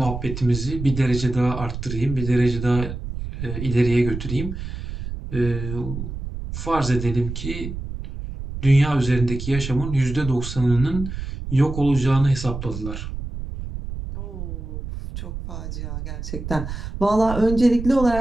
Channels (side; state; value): right; noise; rumble, 7 dB below the sound